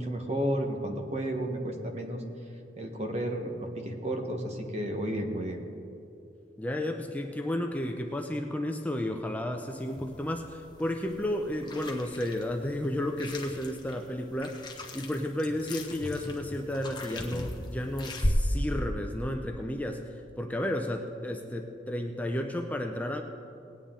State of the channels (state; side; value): normal; both; correlation 0.79